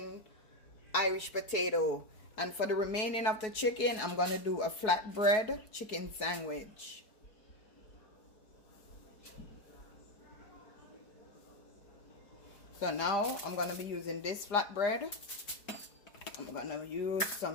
Irish potato. And for the remaining of the chicken, I'm going to do a flatbread chicken sandwich. So now I'm going to be using this flatbread. I'm going to use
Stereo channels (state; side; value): late; right; 4.7 ms